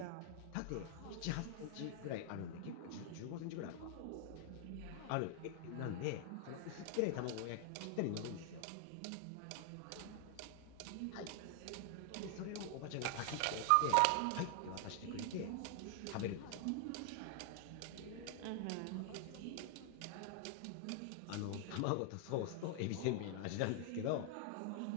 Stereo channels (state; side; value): different; both; correlation 0.00